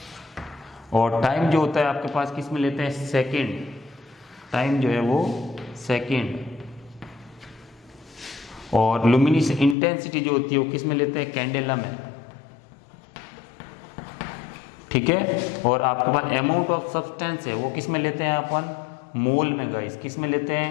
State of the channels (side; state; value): right; drops out; at 9.8 s